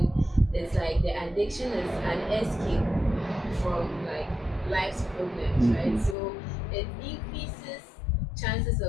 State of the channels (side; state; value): right; drops out; at 6.2 s